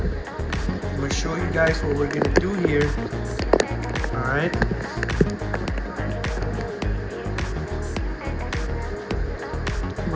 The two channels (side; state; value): both; identical; correlation 1.00